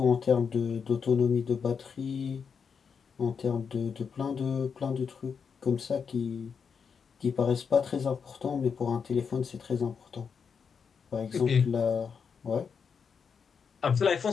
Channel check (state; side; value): quieter; right; 6.3 dB